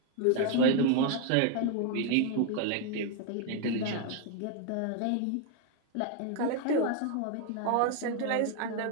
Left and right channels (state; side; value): different; both; correlation 0.01